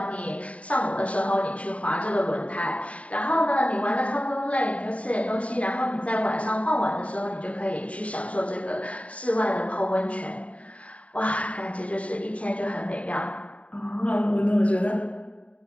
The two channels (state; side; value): late; right; 0.066 ms